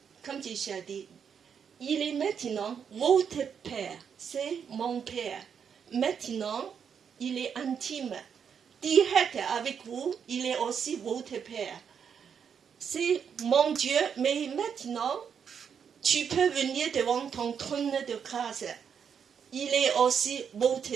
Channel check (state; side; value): quieter; left; 7.3 dB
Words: Comme Jésus a dit, il est maintenant votre Père, c'est mon Père. Maintenant, il est intime, direct avec vous, il est aussi votre Père. C'est mon Dieu, mais maintenant, tu peux venir devant ton trône de grâce. Il est aussi votre